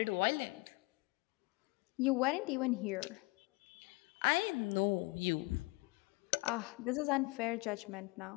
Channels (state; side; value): quieter; right; 26.0 dB